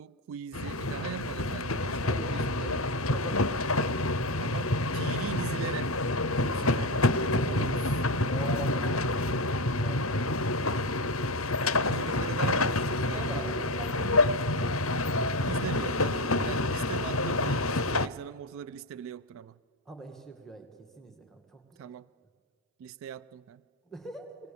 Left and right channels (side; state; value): both; normal; correlation 0.12